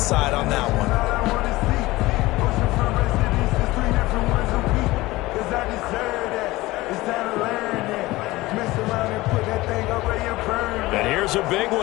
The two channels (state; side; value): quieter; right; 19.3 dB